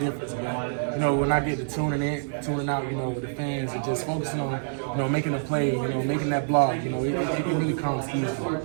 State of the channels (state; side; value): silent; left; digital silence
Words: When I get to tuning out, the fans are just focusing on, making a play, making that block. It really comes easy.